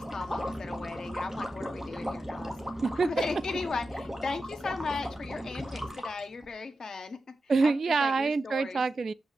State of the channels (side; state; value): both; normal; correlation 0.91